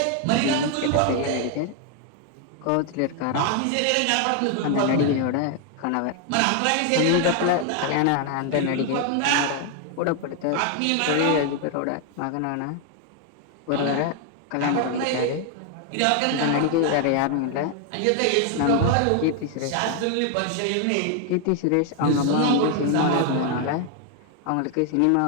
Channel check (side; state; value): both; different; correlation 0.00